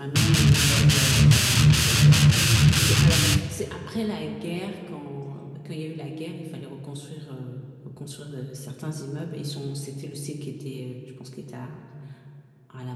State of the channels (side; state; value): both; identical; correlation 1.00